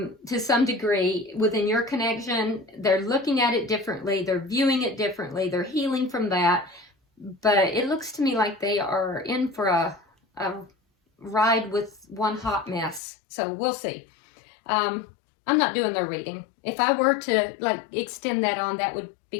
some degree within your connection. They're looking at it differently. They're viewing it differently. They're healing from that. But it looks to me like they are in for a ride with one hot mess. So we'll see. I'm not doing their reading. If I were to like extend that on, that would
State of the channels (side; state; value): right; drops out; at 13.0 s